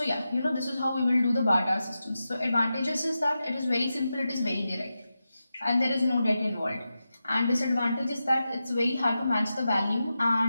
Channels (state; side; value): inverted; both; correlation -0.91